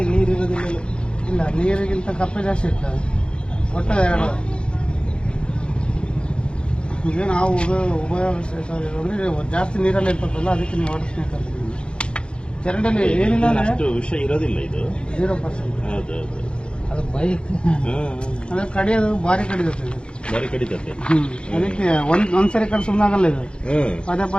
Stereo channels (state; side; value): late; right; 0.055 ms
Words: ನೀರು ಇರೋದಿಲ್ಲ. ಇಲ್ಲ ನೀರಿಗಿಂತ ಕಪ್ಪೆ ಜಾಸ್ತಿ ಇರ್ತದೆ ಒಟ್ಟು ಎರಡು ಈಗ ನಾವು ಉಪಯೋಗ ಜಾಸ್ತಿ ನೀರಲ್ಲಿ ಇರ್ತದಲ್ಲ ಅದಕ್ಕೆ ನೀವು ವಾಟರ್ ಸ್ನೇಕ್ ಅಂತ ಚರಂಡಿಯಲ್ಲಿ ಏನಿಲ್ಲ ಅಂದರೆ ವಿಷಯ ಇರೋದಿಲ್ಲ ಇದು 0%. ಅದು ಬೈಕ್ ಅಂದರೆ ಕಡಿಯೋದು ಭಾರಿ ಕಡಿಯುತ್ತೆ ಅದಕ್ಕೆ ಒಂದ್ಸರಿ ಕಡೆ ಸುಮ್ಮನೆ ಆಗಲ್ಲ ಇದು